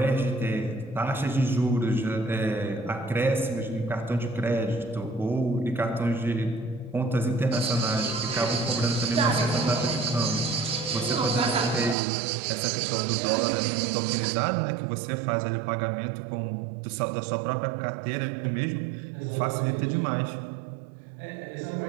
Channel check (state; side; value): drops out; left; at 12.0 s